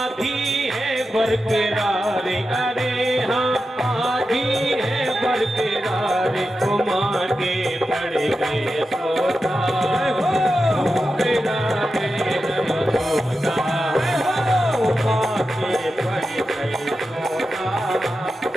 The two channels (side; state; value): both; normal; correlation 0.90